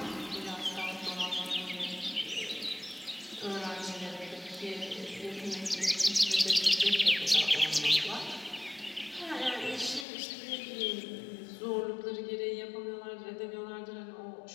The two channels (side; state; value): right; drops out; at 10.1 s